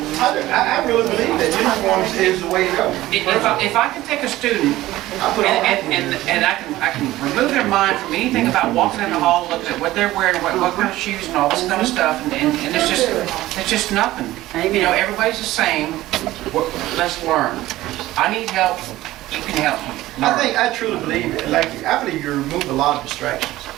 I really believe that uniforms is the way to go. If I can take a student and I can remove their mind from anything about walking in the hall, looking at what they're wearing, what kind of shoes and all this kind of stuff, and it's just nothing. You know, everybody's the same. Let's learn. I need help. You can help me. I truly believe it. I believe you remove a lot of distractions.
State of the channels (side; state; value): left; quieter; 16.3 dB